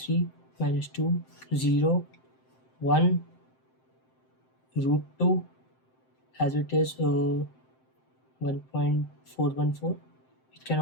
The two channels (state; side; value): late; right; 7.7 ms